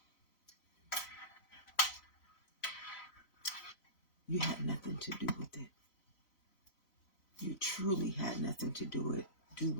you had nothing to do with it. truly had nothing to do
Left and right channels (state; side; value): late; right; 4.0 ms